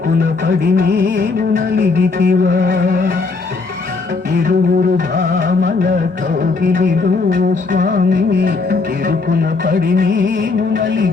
పడి నీవు నలిగితివా ఇరువురు భామల కౌగిలిలో స్వామి ఇరుకున పడి నీవు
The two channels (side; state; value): right; quieter; 4.1 dB